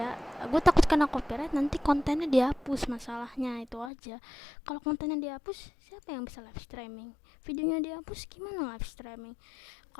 Gue takut kena copyright, nanti kontennya dihapus, masalahnya itu aja. Kalau kontennya dihapus, siapa yang bisa live streaming? Videonya dihapus, gimana live streaming?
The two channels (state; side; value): drops out; right; at 3.9 s